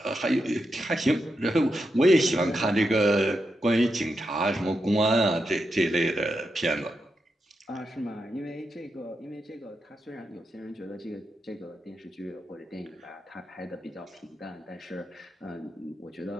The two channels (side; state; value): both; normal; correlation 0.86